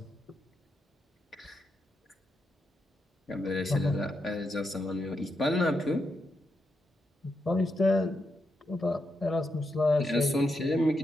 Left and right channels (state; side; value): normal; both; correlation 0.84